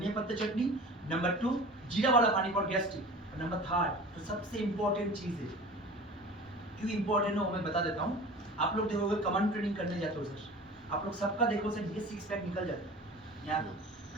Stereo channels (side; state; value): both; normal; correlation 0.39